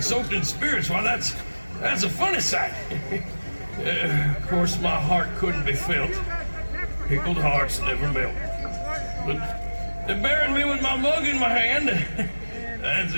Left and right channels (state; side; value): inverted; both; correlation -1.00